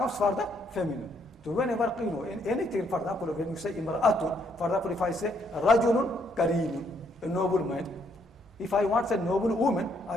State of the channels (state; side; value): normal; both; correlation 0.71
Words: for the feminine. So whenever, in anything, for example, when you say imra'atun, for example, if I say rajulun kareemun, a noble man. If I want to say noble woman, I